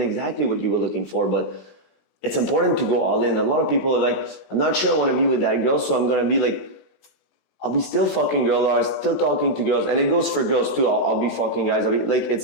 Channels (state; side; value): late; right; 16 ms